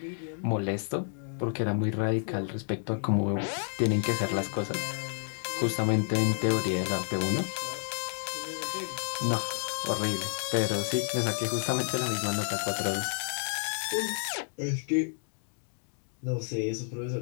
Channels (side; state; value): right; silent; digital silence